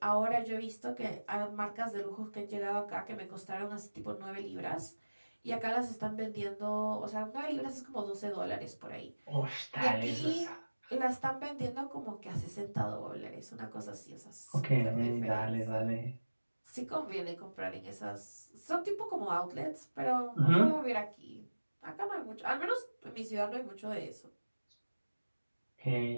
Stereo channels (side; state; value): both; inverted; correlation -1.00